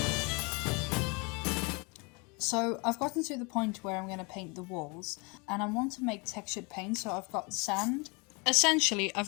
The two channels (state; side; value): quieter; right; 30.1 dB